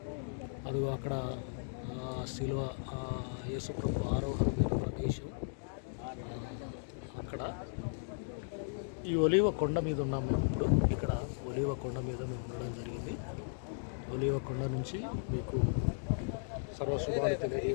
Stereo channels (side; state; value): right; silent; digital silence